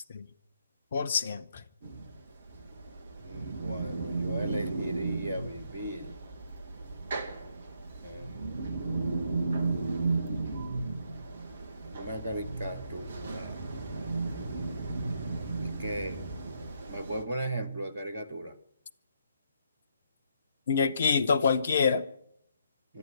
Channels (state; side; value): inverted; both; correlation -0.74